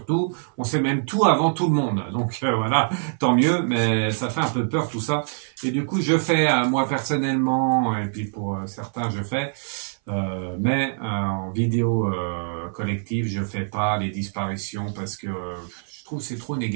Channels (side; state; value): left; silent; 60 dB below the other